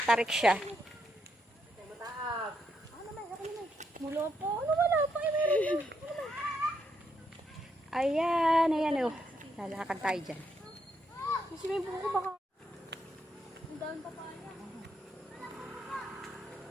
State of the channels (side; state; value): both; normal; correlation 0.78